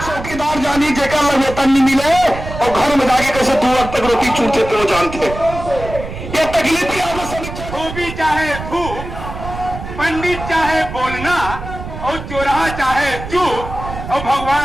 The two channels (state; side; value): noise; right; rumble, 10 dB below the sound